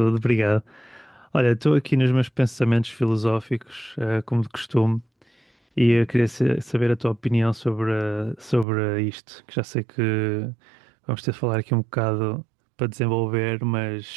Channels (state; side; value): drops out; left; at 8.7 s